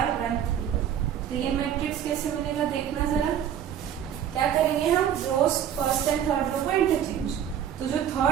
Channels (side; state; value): left; quieter; 9.5 dB